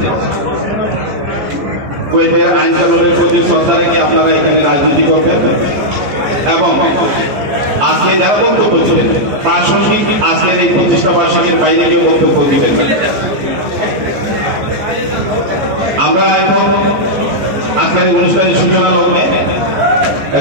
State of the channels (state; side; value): late; left; 14 ms